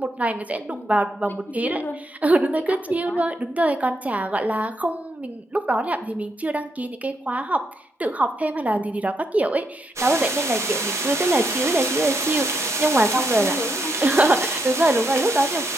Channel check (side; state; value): both; normal; correlation 0.79